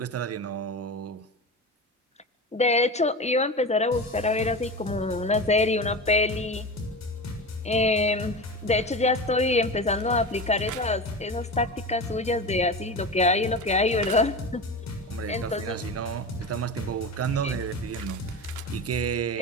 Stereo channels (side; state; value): both; normal; correlation 0.26